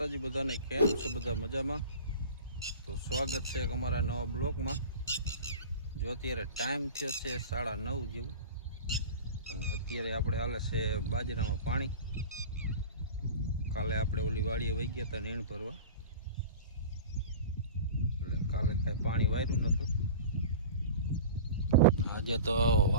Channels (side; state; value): both; inverted; correlation -0.36